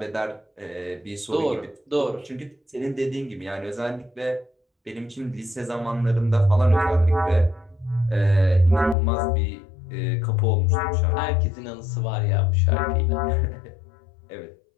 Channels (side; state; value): right; drops out; at 9.0 s